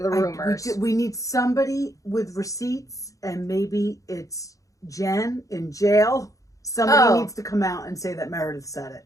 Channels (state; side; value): late; right; 0.16 ms